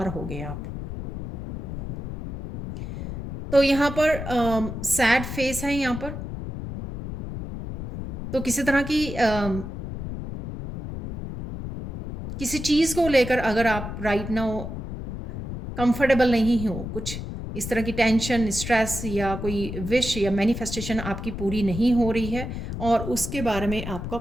होगे आप। तो यहाँ पर सैड फेस है यहाँ पर, तो किसी तरह की किसी चीज़ को लेकर अगर आप राइट नाउ कंफर्टेबल नहीं हो, कुछ इस तरह की टेंशन, स्ट्रेस या कोई विश या मैनिफेस्टेशन आपकी पूरी नहीं हो रही है, और उसके बारे में आपका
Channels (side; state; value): left; noise; rumble, 7 dB below the sound